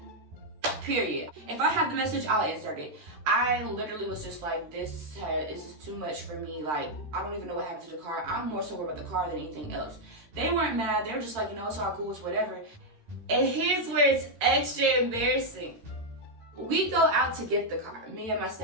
period. If I have the message, I'll insert it. I literally was just like, this is too much for me. Like, I don't even know what happened to the car. I'm more so worried about the car than anything else. They weren't mad. They were just like, you know, it's all cool, it's whatever. And here's where it's extra embarrassing. We go out to get the car, me and my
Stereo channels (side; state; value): left; late; 13 ms